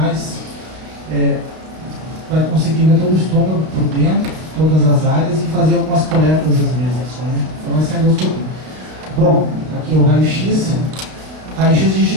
vai conseguir ver todo o estômago por dentro, todas as áreas e fazer algumas coletas às vezes. Né? Então, essa é a endoscopia. Bom, aqui é o raio-x. Raio-x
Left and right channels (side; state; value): left; late; 32 ms